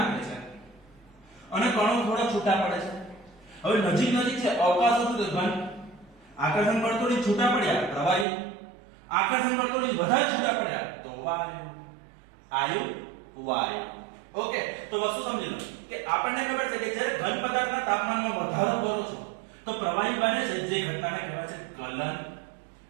છે અને કણો થોડા છૂટા પડે છે. હવે નજીક નજીક છે, અવકાશ હતું તો ઘન, આકર્ષણ બળ તોડી છૂટા પડ્યા પ્રવાહી, આકર્ષણ બળ તોડી વધારે છૂટા પડ્યા તો વાયુ. આયુ વાયુ. ઓકે. તો વસ્તુ સમજી લો કે આપણને ખબર છે કે જ્યારે ઘન પદાર્થના તાપમાનમાં વધારો કરો છો તો પ્રવાહી બને છે, જે ઘટનાને કહેવાય છે ગલન.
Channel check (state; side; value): drops out; left; at 8.2 s